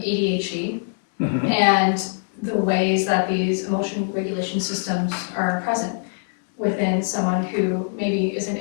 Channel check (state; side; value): silent; right; digital silence